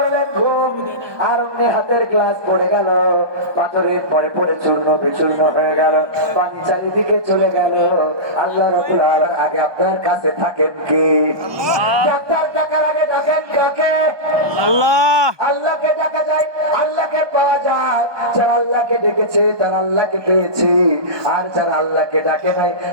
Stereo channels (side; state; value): left; late; 1.2 ms